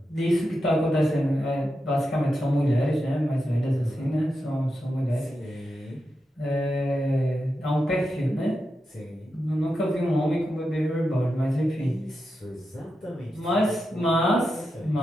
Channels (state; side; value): normal; both; correlation 0.88